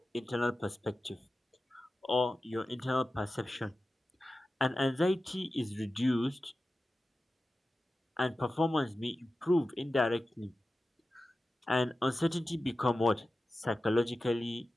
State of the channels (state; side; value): normal; both; correlation 0.94